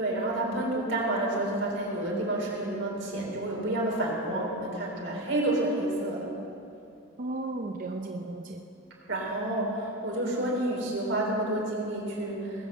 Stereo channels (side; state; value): both; normal; correlation 0.17